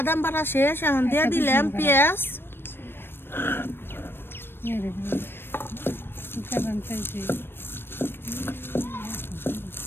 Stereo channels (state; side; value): late; right; 0.10 ms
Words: বাটা শেষ এখন দিয়ে দিলাম পেঁয়াজ